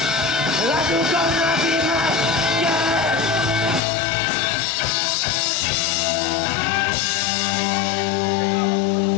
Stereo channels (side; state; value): right; drops out; at 3.8 s